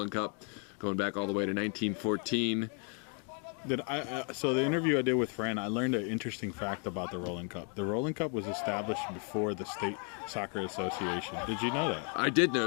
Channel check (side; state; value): right; quieter; 39.7 dB